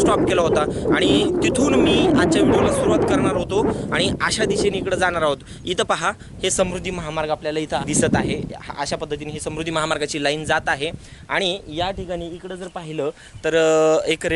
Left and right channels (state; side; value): identical; both; correlation 1.00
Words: केला होता आणि तिथून मी आजच्या व्हिडिओला सुरुवात करणार होतो आणि अशा दिशेने इकडे जाणार आहोत। इथं पहा, हे समृद्धी महामार्ग आपल्याला इथं दिसत आहे। अशा पद्धतीने ही समृद्धी महामार्गाची लाईन जात आहे आणि या ठिकाणी इकडं जर पाहिलं तर एक